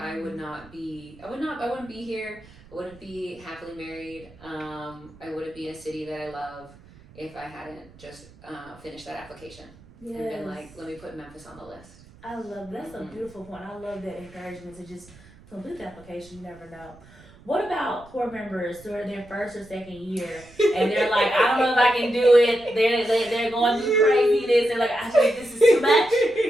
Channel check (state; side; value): noise; right; rumble, 23 dB below the sound